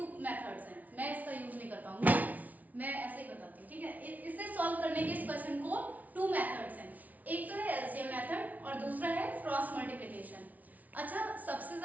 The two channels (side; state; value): left; late; 0.074 ms